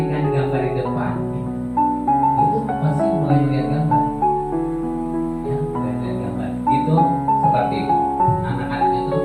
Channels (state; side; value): identical; both; correlation 1.00